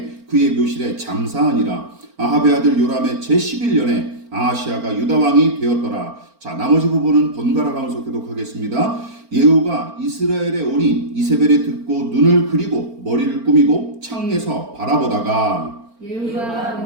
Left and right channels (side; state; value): left; late; 4.4 ms